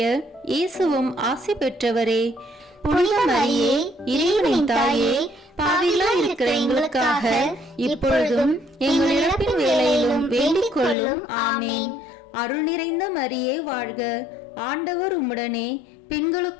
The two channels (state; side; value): drops out; right; at 11.0 s